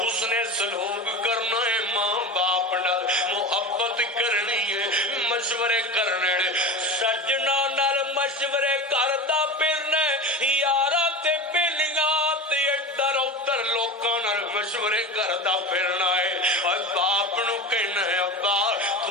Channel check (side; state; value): both; normal; correlation 0.28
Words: اس نے سلوک کرنا ہے ماں باپ نال محبت کرنی ہے مشورے کرنے سجنا نال مشورے کردا پھرنا یارا تے بیلیاں تے ادھر ادھر لوکاں نال مشورے کردا پھرنا ہے اور باپ نو کہنا ہے ابا